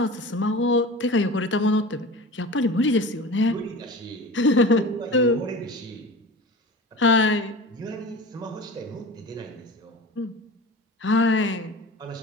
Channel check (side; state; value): both; normal; correlation 0.34